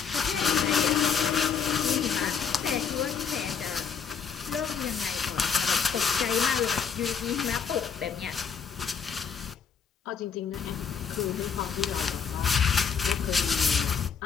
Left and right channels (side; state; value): right; quieter; 6.5 dB